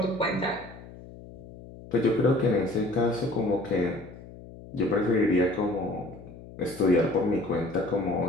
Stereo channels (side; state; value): left; noise; hum, 17 dB below the sound